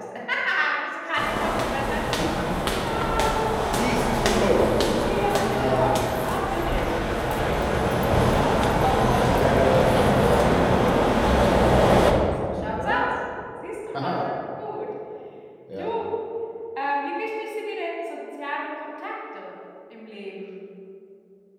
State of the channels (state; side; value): identical; both; correlation 1.00